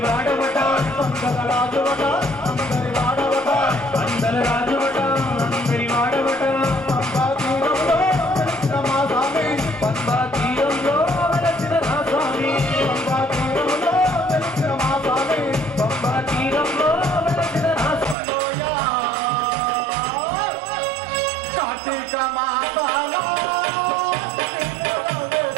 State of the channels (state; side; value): drops out; left; at 18.2 s